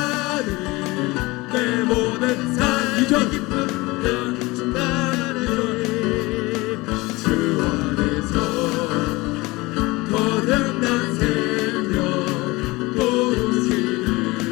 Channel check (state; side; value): quieter; right; 22.4 dB